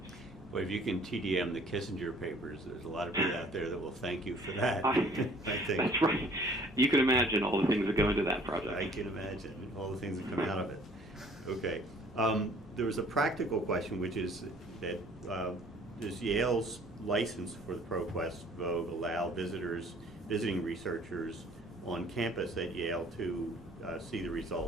Well, if you can TDM the Kissinger papers, there's a lot of people out there that will thank you for that. I think. That's right. You can imagine all the things that go into that project. I can imagine all the things that come out of it. Okay. There was a practical question, which is that does Yale's license for the ProQuest Vogue allow visiting researchers on campus at Yale to see the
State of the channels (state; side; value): normal; both; correlation 0.55